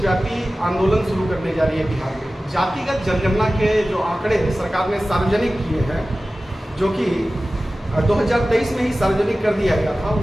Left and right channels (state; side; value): normal; both; correlation 0.96